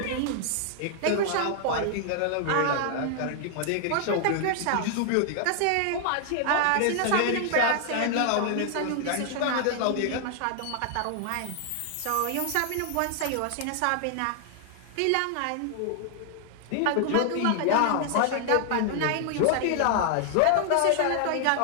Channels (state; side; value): different; both; correlation 0.00